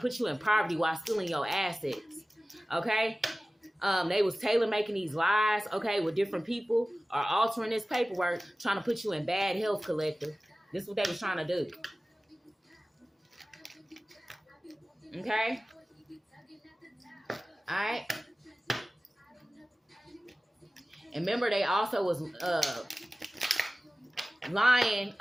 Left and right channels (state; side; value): normal; both; correlation 0.97